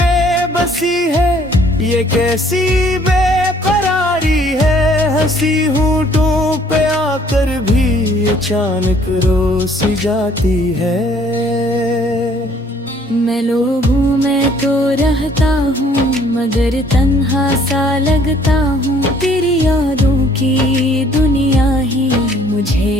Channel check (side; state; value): both; normal; correlation 0.60